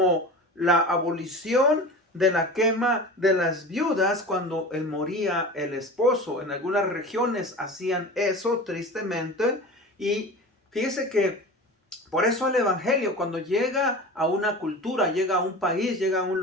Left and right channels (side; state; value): both; normal; correlation 0.34